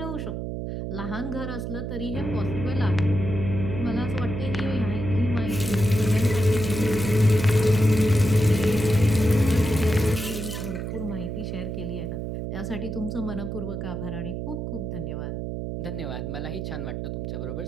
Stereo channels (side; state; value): right; noise; hum, 4 dB below the sound